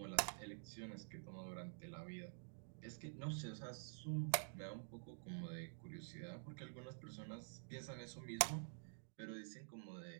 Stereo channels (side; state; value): left; silent; digital silence